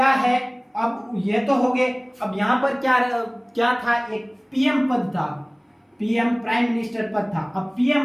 है? अब ये तो हो गए। अब यहां पर क्या था? एक PM पद था, PM प्राइम मिनिस्टर पद था। अब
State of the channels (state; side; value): identical; both; correlation 1.00